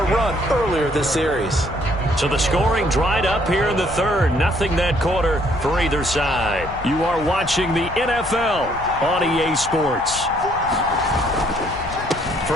run earlier this series. So the scoring dried up here in the third. Nothing that quarter for either side. You are watching the NFL on EA Sports.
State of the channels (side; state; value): left; noise; rumble, 14 dB below the sound